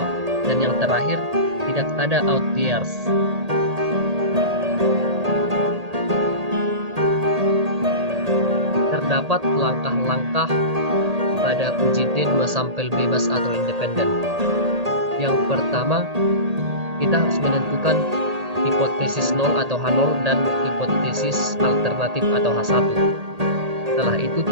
Dan yang terakhir, tidak ada outliers. Terdapat langkah-langkah pada UJT 2 sampel bebas atau independen. Yang pertama, kita harus menentukan hipotesis 0 atau H0 dan hipotesis alternatif atau H1. Setelah itu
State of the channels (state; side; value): late; left; 1.8 ms